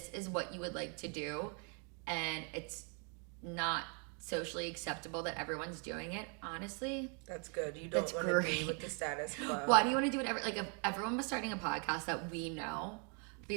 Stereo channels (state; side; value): quieter; left; 38.8 dB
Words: is what you would like to do, and it's not socially acceptable that everyone's doing it, honestly. That's good. You don't want to be with the status quo. Why do you want to do it? Like, if everyone was starting a podcast that we know,